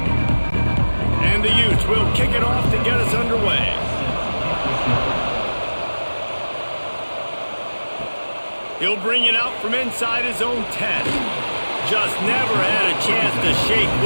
And the Utes will kick it off to get us underway. He'll bring it out from inside his own 10. Just never had a chance to shake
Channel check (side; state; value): both; inverted; correlation -1.00